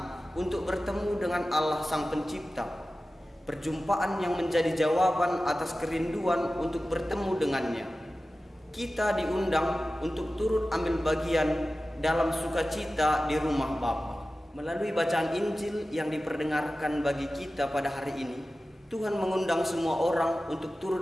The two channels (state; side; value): normal; both; correlation 0.95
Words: untuk bertemu dengan Allah Sang Pencipta. Perjumpaan yang menjadi jawaban atas kerinduan untuk bertemu dengannya. Kita diundang untuk turut ambil bagian dalam sukacita di rumah Bapa. Melalui bacaan Injil yang diperdengarkan bagi kita pada hari ini, Tuhan mengundang semua orang untuk